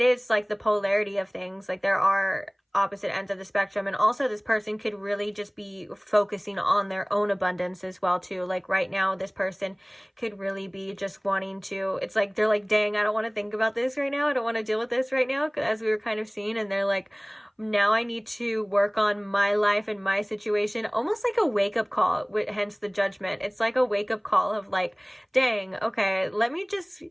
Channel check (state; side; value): identical; both; correlation 1.00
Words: is like the polarity of things. Like, there are opposite ends of the spectrum, and also this person could really just be focusing on their own abundance as well too. Like right now, this person could really be just wanting to, it's like they're like, dang, I don't want to think about this right now, I don't want to deal with this right now, as we were kind of seeing, and they're like, now I need to work on my life and my situation. Almost like a wake-up call, hence the Judgment. It's like a wake-up call of like, dang, okay, let me just